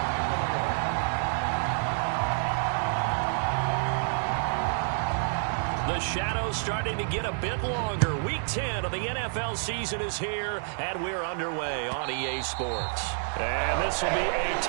The shadow's starting to get a bit longer. Week 10 of the NFL season is here, and we're underway on EA Sports. And this will be a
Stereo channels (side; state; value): left; silent; digital silence